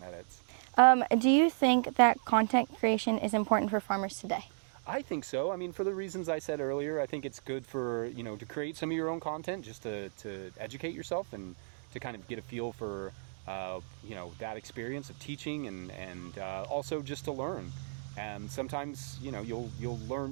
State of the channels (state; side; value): silent; left; digital silence